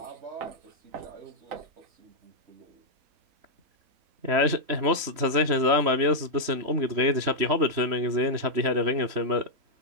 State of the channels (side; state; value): left; late; 3.1 ms